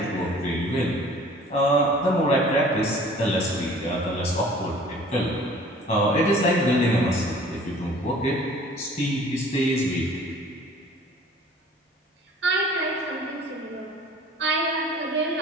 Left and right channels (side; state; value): both; normal; correlation 0.49